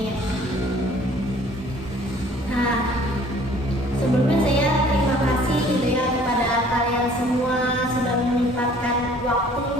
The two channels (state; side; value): normal; both; correlation 0.54